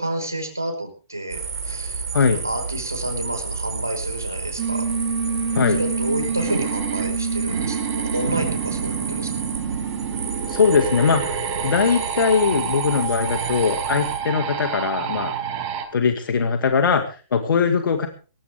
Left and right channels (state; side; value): inverted; both; correlation -0.52